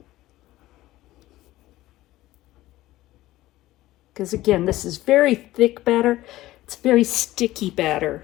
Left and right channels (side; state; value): right; quieter; 16.4 dB